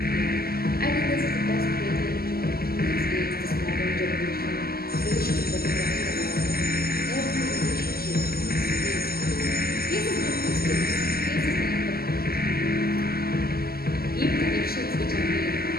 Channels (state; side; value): late; right; 0.44 ms